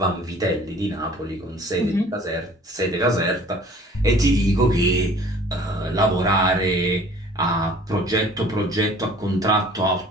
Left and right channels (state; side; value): normal; both; correlation 0.50